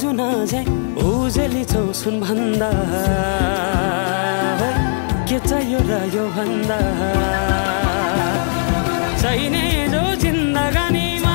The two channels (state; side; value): silent; right; digital silence